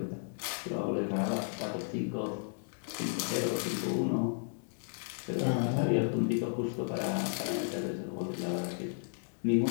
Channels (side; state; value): right; silent; digital silence